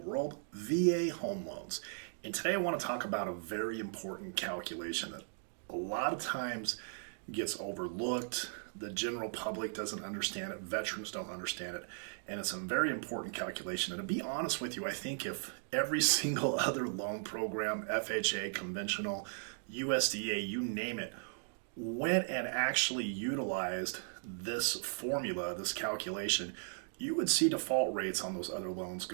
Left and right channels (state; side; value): silent; left; digital silence